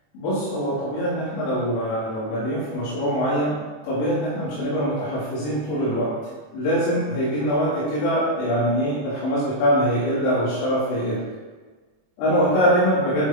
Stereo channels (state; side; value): late; right; 27 ms